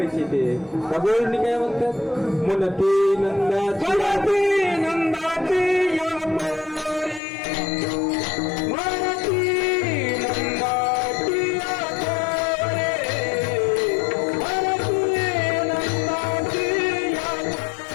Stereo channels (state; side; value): drops out; right; at 7.2 s